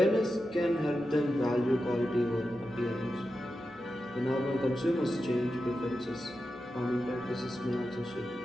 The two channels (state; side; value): noise; right; hum, 28 dB below the sound